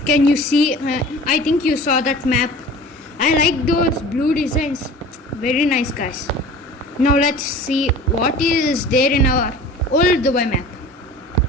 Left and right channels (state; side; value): normal; both; correlation 0.41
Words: can you see? I think you saw that map. I like those blue designs. Very nice, guys. Now let's see what is there in our old Dubai map.